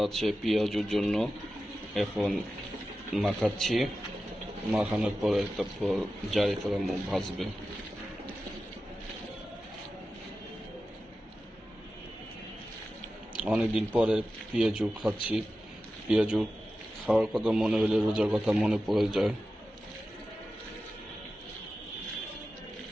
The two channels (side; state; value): both; normal; correlation 0.93